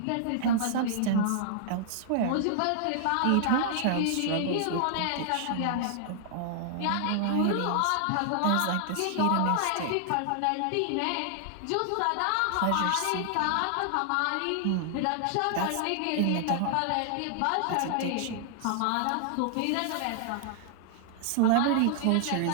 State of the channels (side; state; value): both; different; correlation -0.01